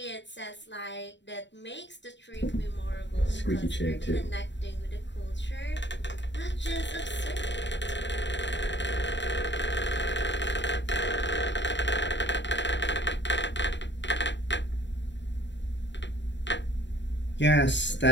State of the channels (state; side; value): late; right; 0.52 ms